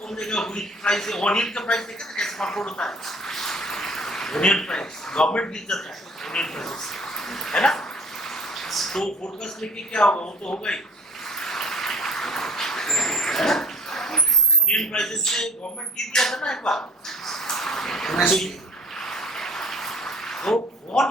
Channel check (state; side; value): normal; both; correlation 0.48